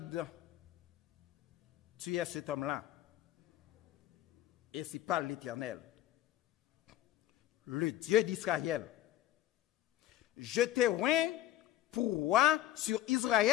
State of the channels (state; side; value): quieter; right; 13.7 dB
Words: tu es cet homme-là. Et c'est pas l'Éternel, le Dieu d'Israël. Je t'ai oint pour roi sur